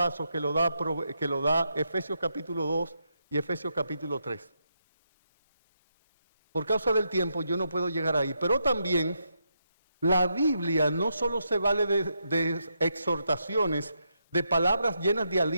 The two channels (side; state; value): both; inverted; correlation -0.82